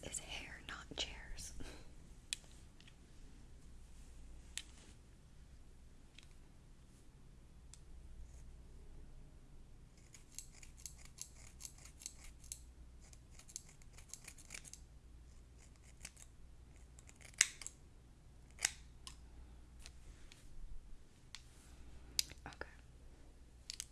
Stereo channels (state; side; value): identical; both; correlation 1.00